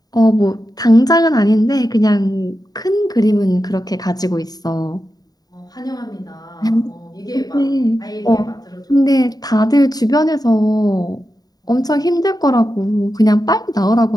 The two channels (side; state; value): right; late; 0.19 ms